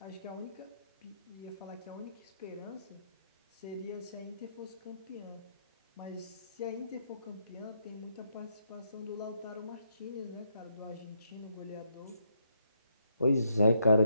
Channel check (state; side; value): inverted; both; correlation -0.77